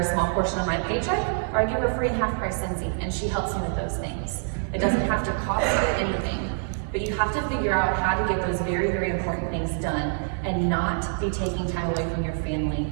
small portion of my paycheck or I give her free half-price Sensei, and she helps me with those things. It doesn't have to cost you anything, but you have to figure out how to get those very, very important things done and not be taking time away from your family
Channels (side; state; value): left; silent; 59 dB below the other